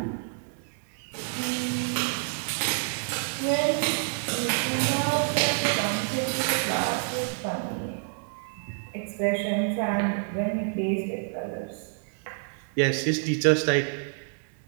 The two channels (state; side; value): silent; left; 59 dB below the other